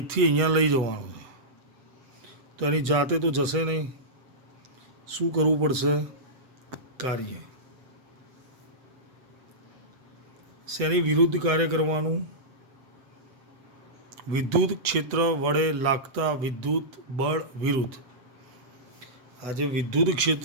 અહીંયા લઈ જવાનું છે. તો એની જાતે તો જશે નહીં. શું કરવું પડશે? કાર્ય. શેની વિરુદ્ધ કાર્ય કરવાનું? વિદ્યુત ક્ષેત્ર વડે લાગતા વિદ્યુત બળ વિરુદ્ધ. આ જે વિદ્યુત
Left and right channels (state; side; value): late; left; 8.0 ms